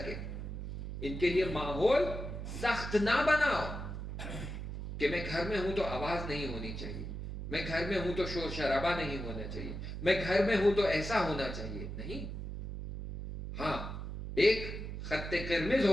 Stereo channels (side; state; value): right; noise; hum, 6 dB below the sound